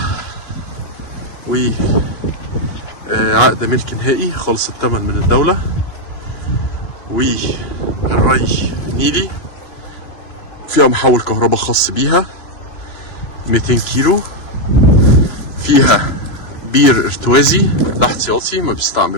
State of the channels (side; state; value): right; late; 2.9 ms